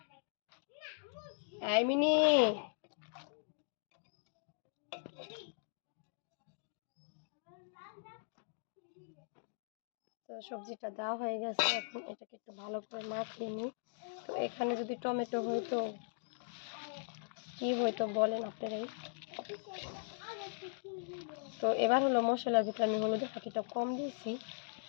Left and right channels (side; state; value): right; silent; digital silence